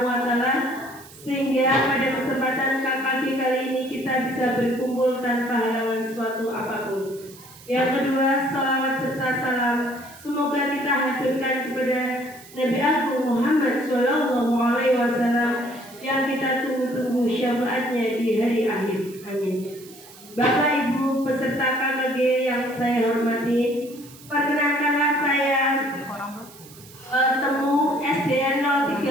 wa taala sehingga pada kesempatan KKG kali ini kita bisa berkumpul tanpa halangan suatu apapun. Yang kedua, salawat serta salam semoga kita haturkan kepada Nabi Agung Muhammad Shallallahu Alaihi Wasallam yang kita tunggu-tunggu syafaatnya di hari akhir. Amin. Bapak Ibu peserta KKG yang saya hormati, perkenankanlah saya Temu SDN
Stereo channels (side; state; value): right; noise; hiss, 21 dB below the sound